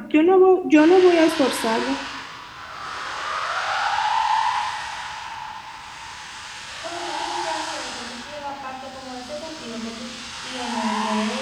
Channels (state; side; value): identical; both; correlation 1.00